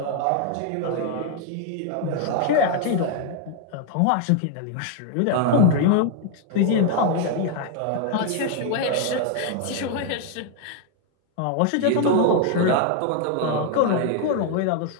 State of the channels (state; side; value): different; both; correlation 0.00